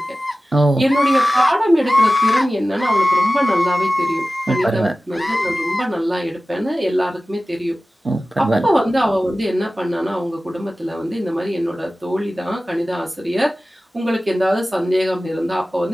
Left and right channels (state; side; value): normal; both; correlation 0.96